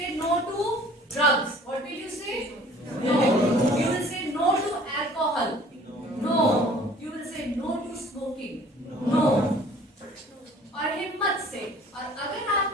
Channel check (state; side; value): normal; both; correlation 0.51